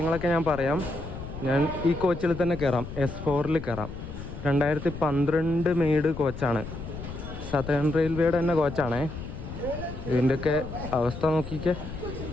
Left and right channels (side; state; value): left; noise; rumble, 9 dB below the sound